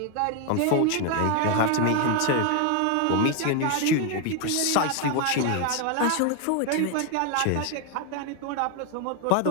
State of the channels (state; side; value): different; both; correlation 0.01